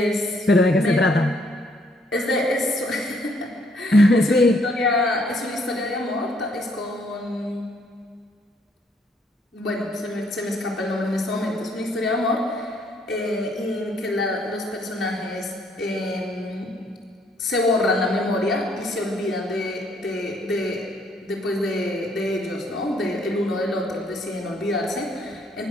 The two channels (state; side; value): normal; both; correlation 0.68